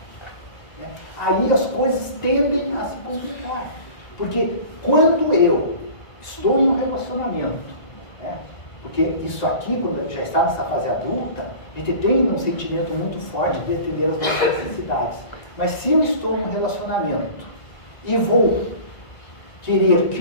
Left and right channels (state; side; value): late; right; 1.9 ms